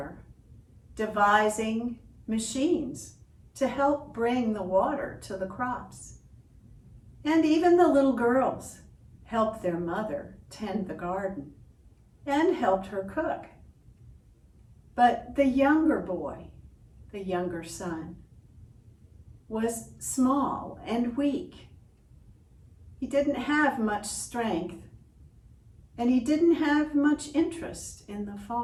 devising machines to help bring the water to the crops. And even the little girls helped their mother tend the garden and helped her cook. But the younger boy, the younger son, was small and weak. He didn't have much strength, and he didn't have much interest in the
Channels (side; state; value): both; identical; correlation 1.00